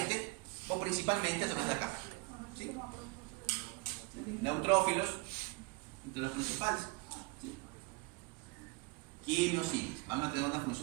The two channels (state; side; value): quieter; left; 25.6 dB